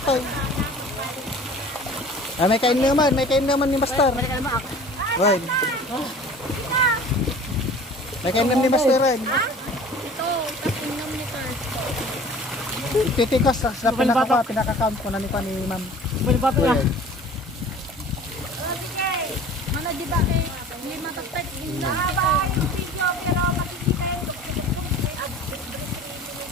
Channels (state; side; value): normal; both; correlation 0.44